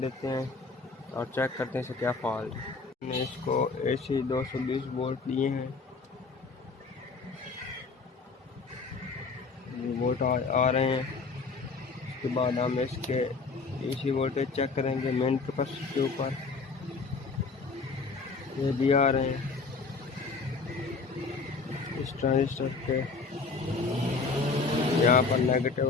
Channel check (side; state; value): right; quieter; 4.4 dB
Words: हैं और चेक करते हैं इसे क्या फॉल्ट है। हमने इसको AC 220 वोल्ट लिए हैं, वोल्ट आ रहे हैं। उसके बाद हम इसके AC वोल्टेज चेक करेंगे मेन कैपेसिटर के ऊपर, ये भी आ रहे हैं। इस ट्रांजिस्टर के यहाँ पर